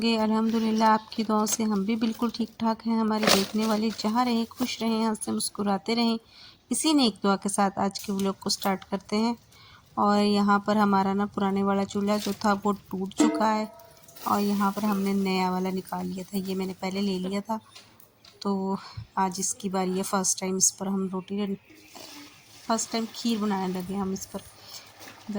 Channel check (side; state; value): both; identical; correlation 1.00